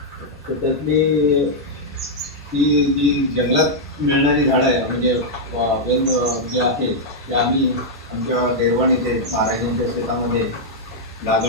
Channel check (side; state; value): both; normal; correlation -0.05